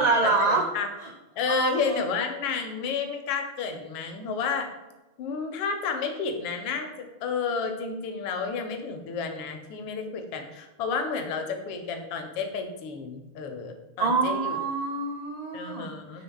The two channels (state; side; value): late; right; 7.3 ms